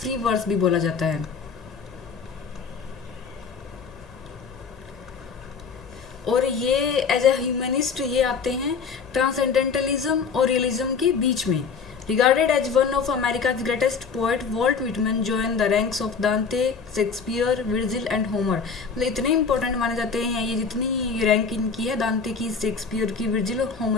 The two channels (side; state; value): right; quieter; 5.6 dB